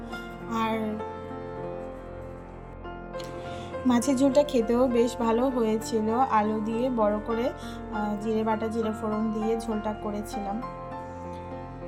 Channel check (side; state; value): both; identical; correlation 1.00